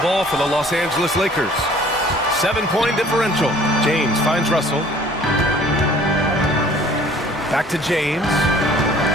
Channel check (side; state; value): both; normal; correlation 0.53